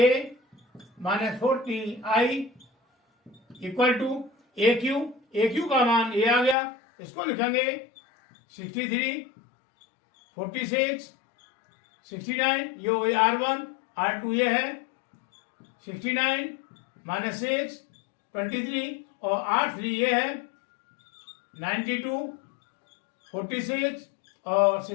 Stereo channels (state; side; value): drops out; right; at 6.6 s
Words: minus 40I equal to AQ का मान ये आ गया, इसको लिखेंगे 63 46 69, ये हो गई R1 R2 ये है 69 माइनस 6 23 और R3 ये है 92 46 और